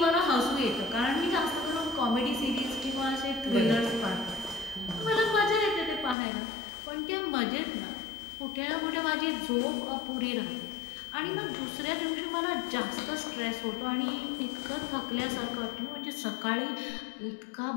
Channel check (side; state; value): right; drops out; at 6.2 s